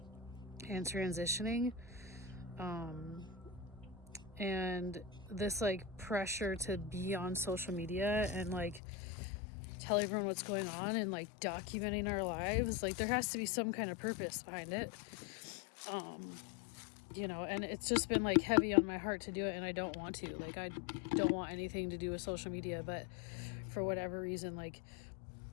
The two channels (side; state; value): right; drops out; at 8.8 s